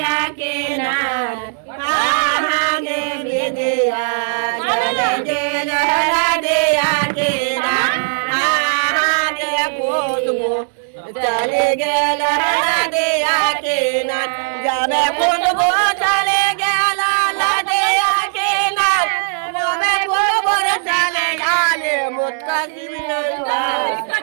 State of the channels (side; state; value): left; silent; digital silence